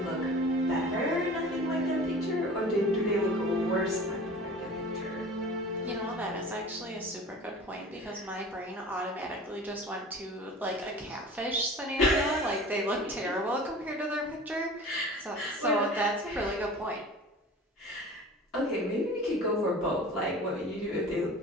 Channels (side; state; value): both; normal; correlation 0.40